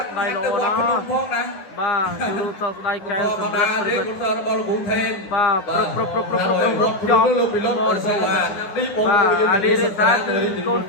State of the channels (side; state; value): right; late; 10 ms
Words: ដៃល្អណាស់បាទជួបសោកស្ដាយកែសម្រាប់ប្រវត្តិរបស់លោកថេនបាទប្រចំលោកពីលោកបាទអាលីនេះថាគឺកូន